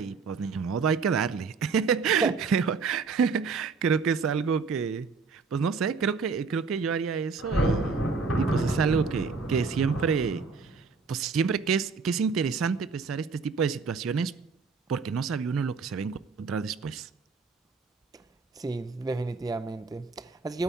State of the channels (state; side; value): quieter; left; 4.9 dB